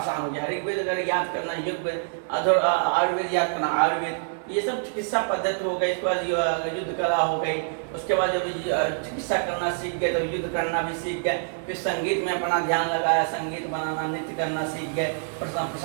हो गया। ऋग्वेद अगर याद करना, यजुर्वेद, आयुर्वेद याद करना, आयुर्वेद, ये सब चिकित्सा पद्धति हो गई। इसके बाद युद्ध कला हो गई। उसके बाद जब चिकित्सा करना सीख गए तो युद्ध करना भी सीख गए। फिर संगीत में अपना ध्यान लगाया, संगीत बनाना, नृत्य करना सीख गए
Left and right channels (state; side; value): silent; left; 61 dB below the other